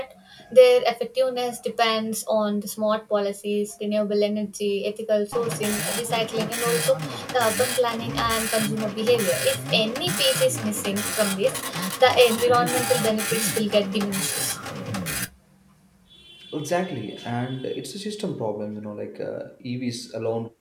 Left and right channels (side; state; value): both; identical; correlation 1.00